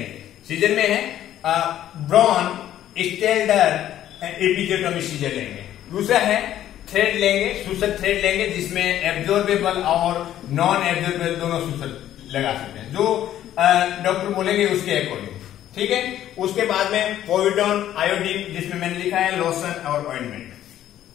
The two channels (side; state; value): right; quieter; 12.0 dB